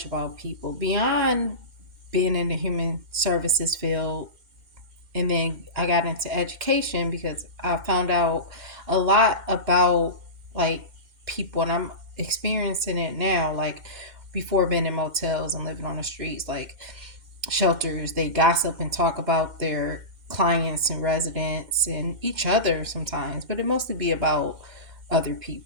about people beyond being in the human services field. And then I got into education because I found out a lot about like people, and I'm experiencing it now. Like before being in motels and living on the streets, like shelters, they gossip and talk about their clients and residents and each other sometimes, but it mostly be about other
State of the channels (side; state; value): left; late; 2.1 ms